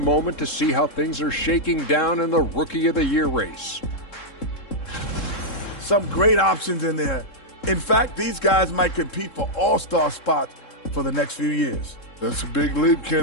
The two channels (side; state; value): right; late; 3.7 ms